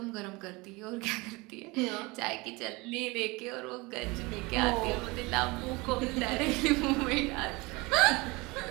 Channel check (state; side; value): quieter; left; 24.5 dB